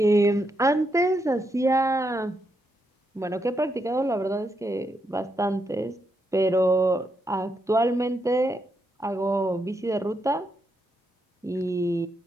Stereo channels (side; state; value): both; normal; correlation 0.81